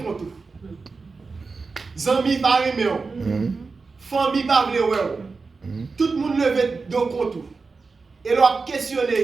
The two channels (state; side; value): quieter; left; 4.3 dB